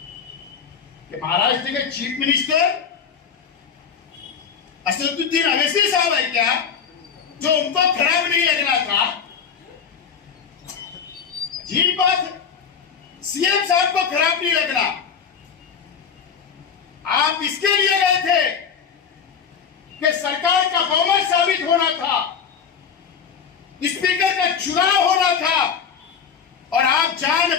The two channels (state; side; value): quieter; right; 6.9 dB